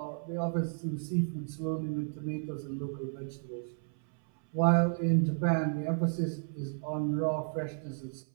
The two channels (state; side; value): silent; left; 56 dB below the other